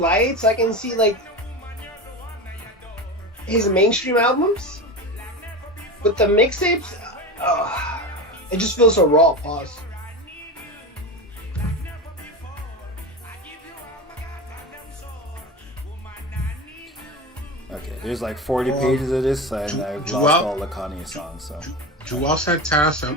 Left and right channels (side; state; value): both; normal; correlation 0.25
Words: I can see like his mainstream albums, but the mixtapes, it just feels so raw. Pause. Okay, there's like 40 pages of this, and I've lost all the Kanye songs. So. Joel Santana